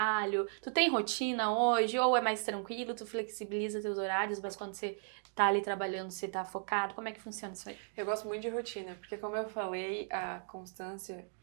Tu tem rotina hoje? Ou é mais tranquilo? Tu flexibiliza teus horários, mas quando você tá ali trabalhando, você tá focado? Como é que funciona isso aí? Eu gosto muito de rotina, porque como eu falei, a constância,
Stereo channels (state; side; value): silent; left; 54 dB below the other